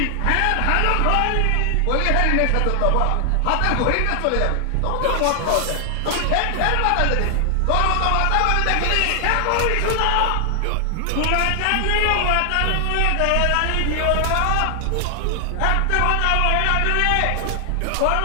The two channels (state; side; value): different; both; correlation 0.00